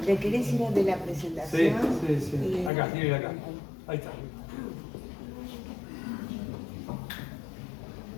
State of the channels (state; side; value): drops out; right; at 2.7 s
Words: ¿Le querés ir a de la presentación? Sí. Acá, quiero ir acá. Ahí está.